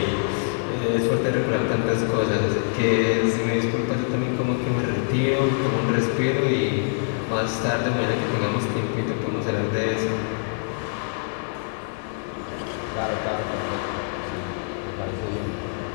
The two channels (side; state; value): right; silent; digital silence